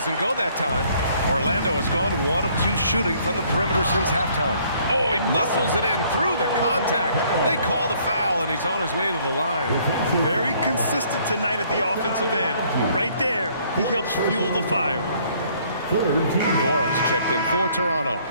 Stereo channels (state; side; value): inverted; both; correlation -0.62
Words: go that time. Orlando has gone 1 of 2 shooting from the perimeter since halftime. Oh, he muscles it in through the contact. They call the foul, and he's on his way to the line. Very consistent tonight at the offensive end. Right there, he helps fuel the fire. Nora's checked in for Toronto.